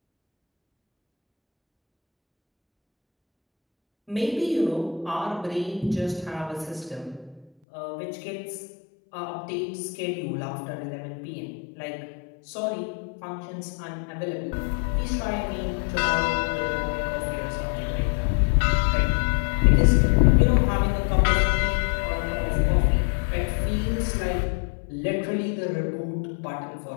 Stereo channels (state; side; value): drops out; right; at 7.5 s